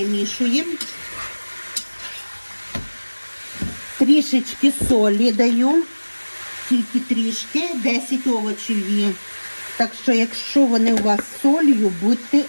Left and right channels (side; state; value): both; inverted; correlation -1.00